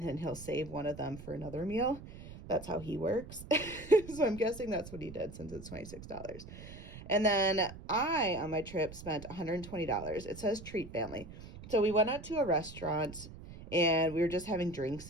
then he'll save one of them for another meal. That's how he works. So I'm guessing that's what he did since it's $26. And then I, on my trip, spent $120. It says treat family. So we went out to a restaurant and we were just having drinks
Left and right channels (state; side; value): noise; right; rumble, 14 dB below the sound